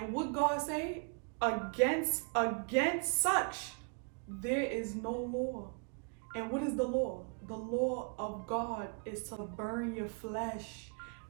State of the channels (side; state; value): left; quieter; 39.0 dB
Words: what God say? Against such there is no law. And what is the law? The law of God is to burn your flesh.